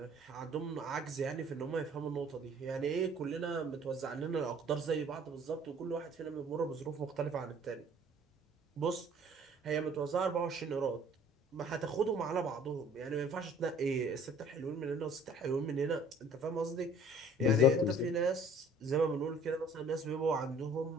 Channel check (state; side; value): normal; both; correlation 0.53